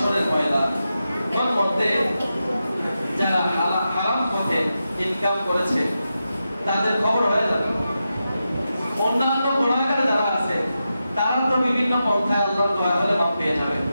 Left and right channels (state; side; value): inverted; both; correlation -0.89